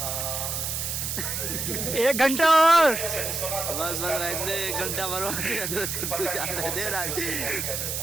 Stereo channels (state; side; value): noise; right; hiss, 2 dB below the sound